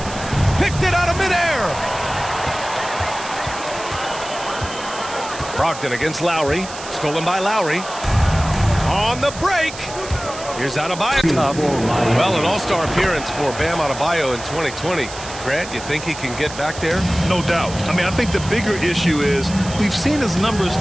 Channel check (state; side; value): noise; right; hiss, 13 dB below the sound